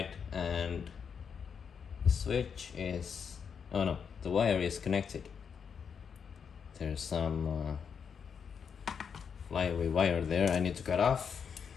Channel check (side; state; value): right; quieter; 6.7 dB